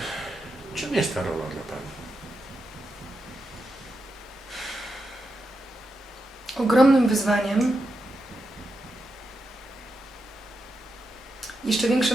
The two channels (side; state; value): both; normal; correlation 0.86